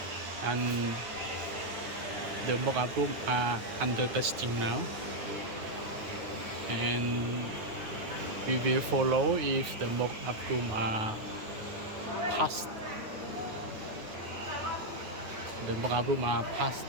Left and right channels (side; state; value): left; late; 9.4 ms